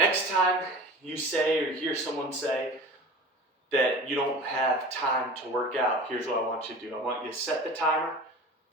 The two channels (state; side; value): normal; both; correlation 0.37